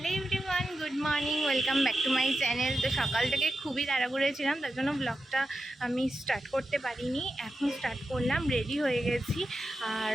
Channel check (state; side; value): normal; both; correlation 0.90